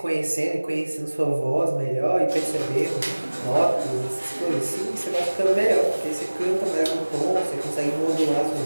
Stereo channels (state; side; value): inverted; both; correlation -1.00